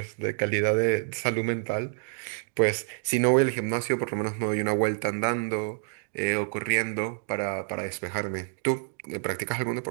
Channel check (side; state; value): left; silent; digital silence